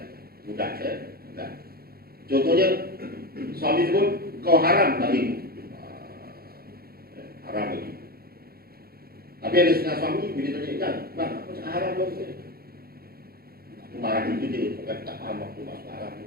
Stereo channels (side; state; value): left; late; 0.44 ms